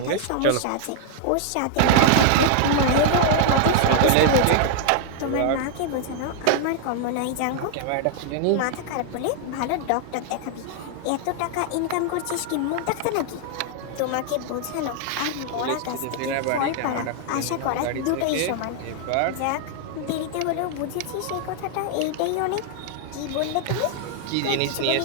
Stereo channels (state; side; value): different; both; correlation 0.00